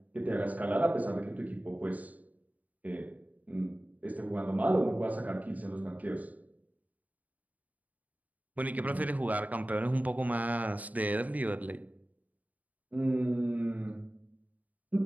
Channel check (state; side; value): late; left; 0.075 ms